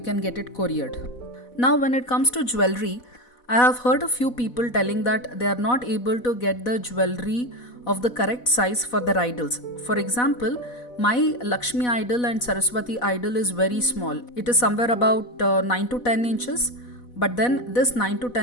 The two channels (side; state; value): right; late; 4.1 ms